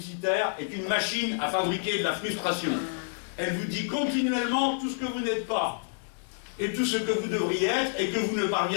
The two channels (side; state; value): right; silent; digital silence